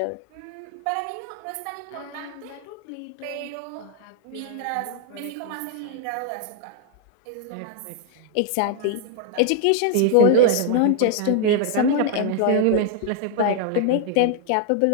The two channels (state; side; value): different; both; correlation 0.00